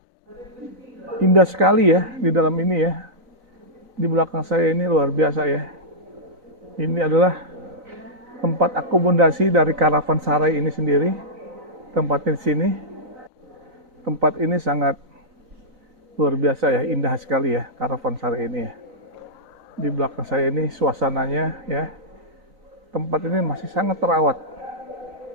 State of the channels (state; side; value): late; left; 3.9 ms